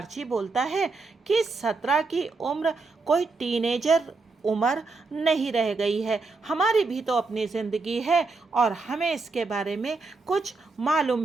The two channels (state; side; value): quieter; left; 3.9 dB